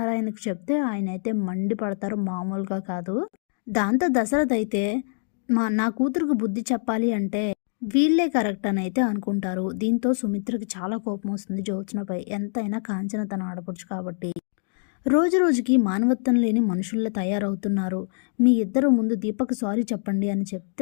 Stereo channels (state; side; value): silent; right; 62 dB below the other